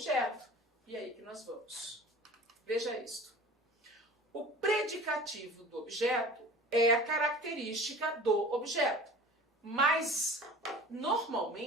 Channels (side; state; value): both; normal; correlation 0.41